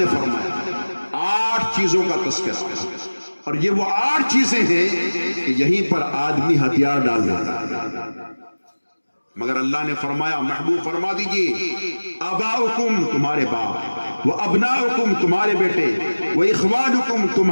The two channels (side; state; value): both; inverted; correlation -1.00